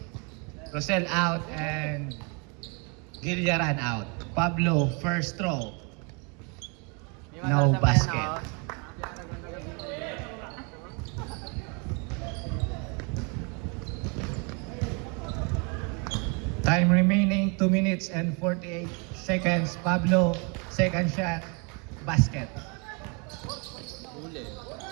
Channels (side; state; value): left; quieter; 33.5 dB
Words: Rosel out and Gilliaran out. Pablo first throw. No basket. Time remaining 2 minutes and 48 seconds. Pablo, second shot, basket. Huli.